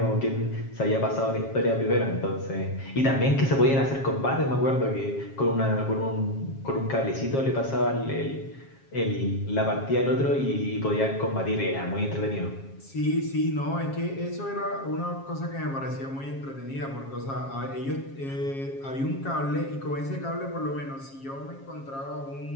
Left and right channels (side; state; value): right; late; 7.4 ms